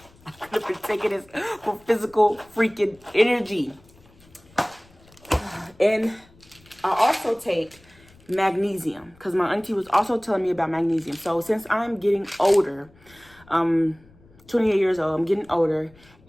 I could have been taking this for physical freaking energy. And I also take magnesium, because my auntie was also telling me about magnesium. So since I'm getting older, 28 years old, I'm getting older,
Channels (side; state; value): left; noise; rumble, 27 dB below the sound